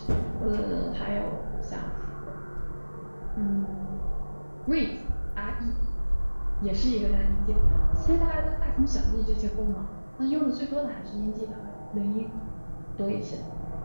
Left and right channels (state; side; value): inverted; both; correlation -1.00